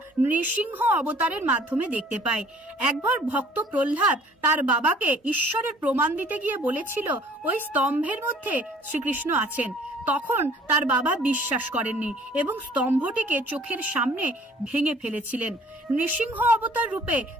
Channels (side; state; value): both; normal; correlation 0.54